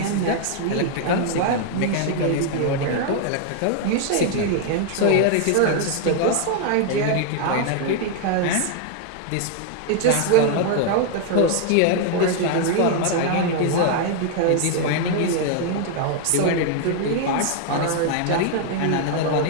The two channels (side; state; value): both; different; correlation 0.00